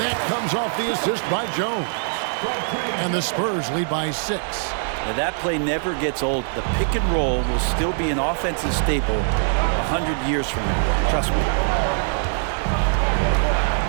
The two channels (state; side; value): silent; left; 59 dB below the other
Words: that comes off the assist by Jones. And the Spurs lead by 6. Now that play never gets old. The pick and roll will still be an offensive staple 100 years from now. Trust me.